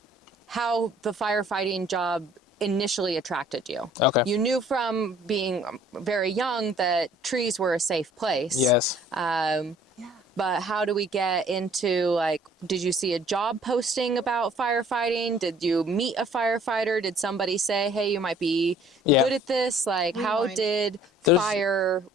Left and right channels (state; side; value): normal; both; correlation 0.56